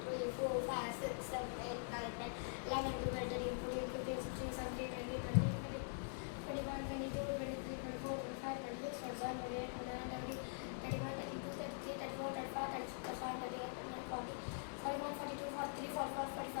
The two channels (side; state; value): right; silent; digital silence